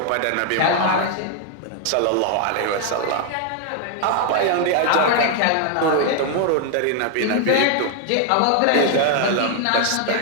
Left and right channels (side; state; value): both; different; correlation 0.00